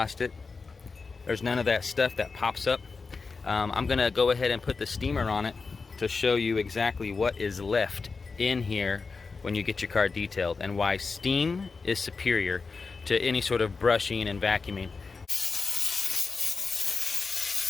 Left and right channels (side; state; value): right; quieter; 4.5 dB